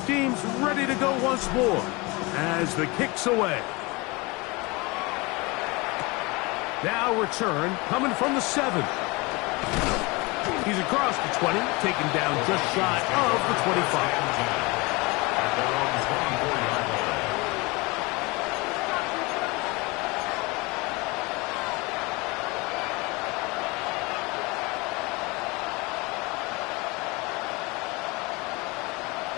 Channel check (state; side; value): quieter; right; 25.5 dB